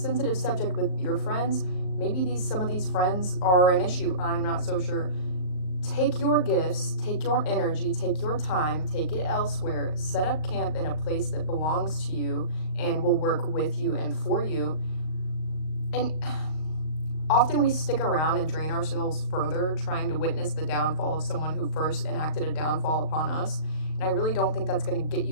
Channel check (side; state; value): right; late; 38 ms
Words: subject with your friends. Maybe some of these friends are an issue. I'm not so sure. Take your gifts, take your energy, take your time, take it elsewhere. Set up camp in a place that belongs to you and will work with you and for you. And often we stick around and drain ourselves further trying to witness the downfall of someone who first enacted a downfall upon us. And I really don't think that's going to get